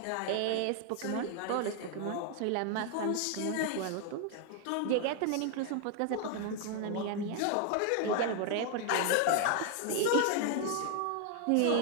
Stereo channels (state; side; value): different; both; correlation 0.00